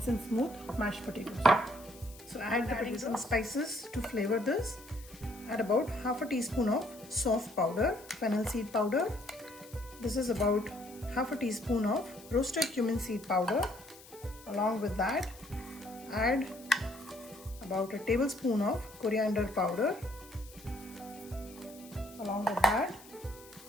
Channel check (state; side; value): noise; left; hiss, 20 dB below the sound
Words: and smooth mashed potatoes. So add the potatoes and spices to flavor this. Add about half a teaspoon of soft powder, fennel seed powder. This is about half a teaspoon of roasted cumin seed powder. Along with that, add about a tablespoon of coriander powder. Along with that,